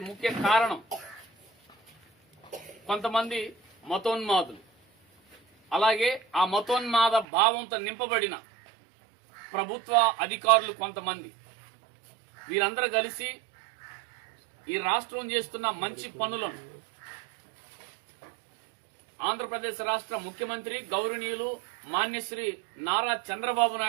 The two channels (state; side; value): drops out; left; at 7.2 s